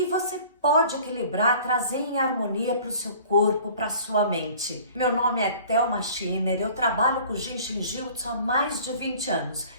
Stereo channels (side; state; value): both; inverted; correlation -0.48